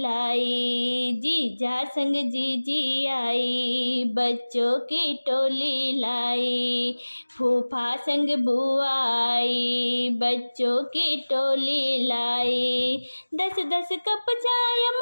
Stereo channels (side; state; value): both; inverted; correlation -1.00